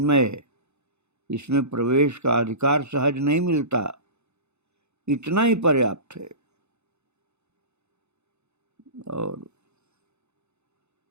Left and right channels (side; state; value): left; late; 0.81 ms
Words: है, इसमें प्रवेश का अधिकार सहज नहीं मिलता, इतना ही पर्याप्त है। और